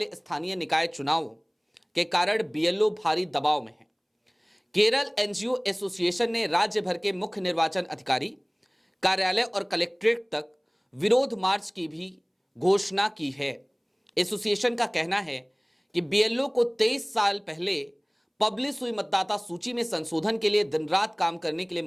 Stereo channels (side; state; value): both; identical; correlation 1.00